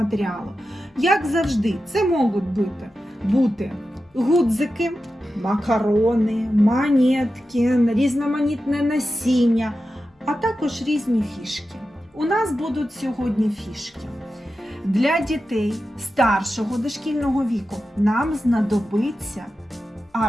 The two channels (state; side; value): normal; both; correlation 0.92